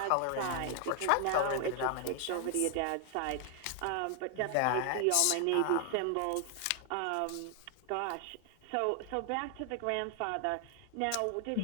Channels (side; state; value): both; different; correlation 0.00